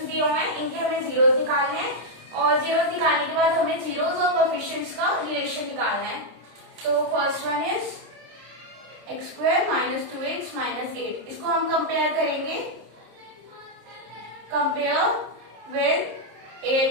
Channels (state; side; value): late; left; 26 ms